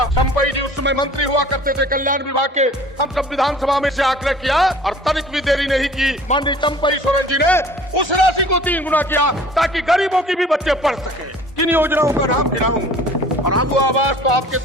चंपई जी उस समय मंत्री हुआ करते थे कल्याण विभाग के। हम सब विधानसभा में से आग्रह किया और तनिक भी देरी नहीं की, माननीय चंपई सोरेन जी ने उस राशि को 3 गुना किया ताकि गरीबों की भी बच्चे पढ़ सके। किन योजनाओं का नाम गिनाऊं? और आगू आवाज तो आपके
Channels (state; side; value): normal; both; correlation 0.49